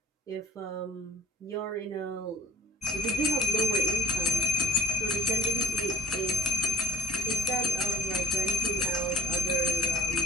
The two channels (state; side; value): normal; both; correlation 0.46